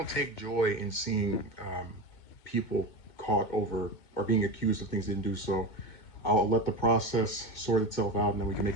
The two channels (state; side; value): late; right; 2.2 ms